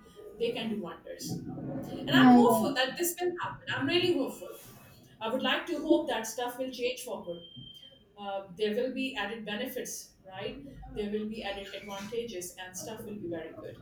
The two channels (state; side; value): identical; both; correlation 1.00